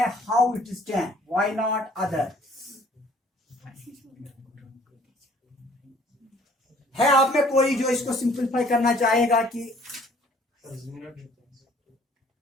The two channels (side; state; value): both; normal; correlation 0.56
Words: how it is 10 why not other है आप में कोई जो इसको सिंपलीफाई करना चाहेगा कि